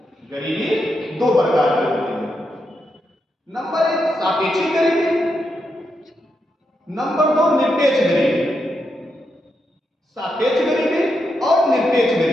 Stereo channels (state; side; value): normal; both; correlation 0.83